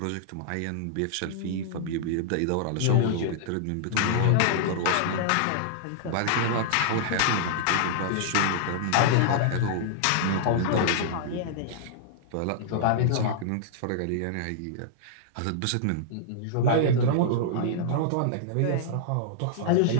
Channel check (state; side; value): different; both; correlation -0.01